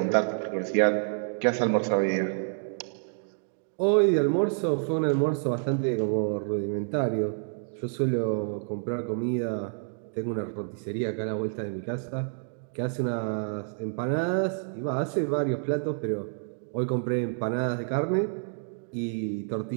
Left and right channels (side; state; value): left; silent; digital silence